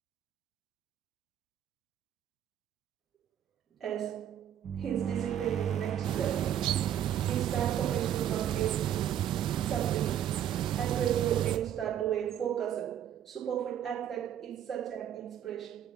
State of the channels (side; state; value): left; quieter; 10.3 dB